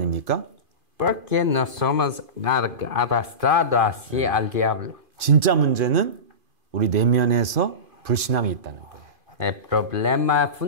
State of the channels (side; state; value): left; late; 2.5 ms